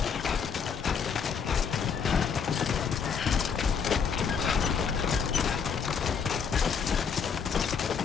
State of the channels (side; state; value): right; quieter; 6.4 dB